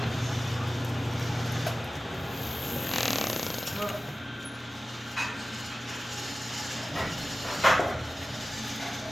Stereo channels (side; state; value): both; normal; correlation 0.96